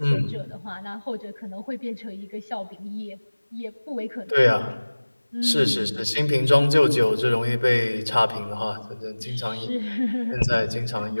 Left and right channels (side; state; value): both; inverted; correlation -1.00